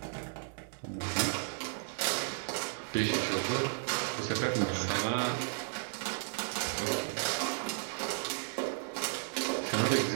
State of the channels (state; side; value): silent; left; digital silence